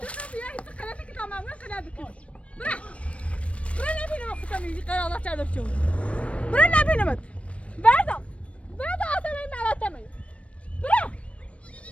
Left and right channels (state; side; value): late; right; 0.062 ms